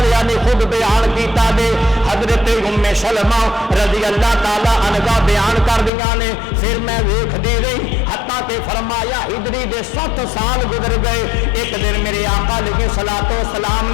نے خود بیان کیتا دے، حضرت اُمّ سلمہ رضی اللہ تعالی عنہا بیان کر دیا نے، پھر میں ویکھ دی رہی حتیٰ کہ فرمایا ہجری دے 7 سال گزر گئے، ایک دن میرے آقا علیہ الصلوۃ والسلام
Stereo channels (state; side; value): drops out; right; at 5.9 s